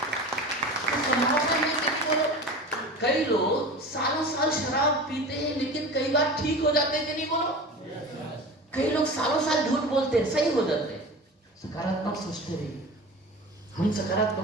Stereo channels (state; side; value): normal; both; correlation 0.34